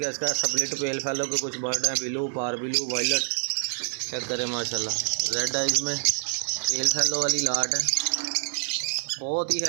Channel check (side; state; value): left; silent; digital silence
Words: है। इसका स्प्लिट पेल फैलो के कुछ बर्ड हैं, ब्लू, पार ब्लू, वायलट। चेक करें माशाल्लाह, रेड आइज में पेल फैलो वाली लाट है। बहुत ही